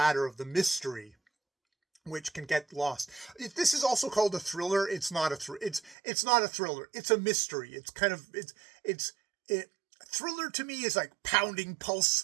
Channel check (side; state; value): left; drops out; at 6.0 s